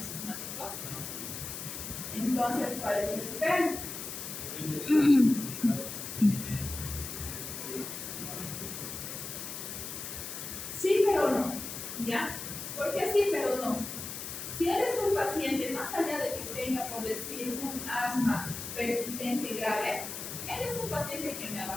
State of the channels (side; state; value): left; noise; hiss, 7 dB below the sound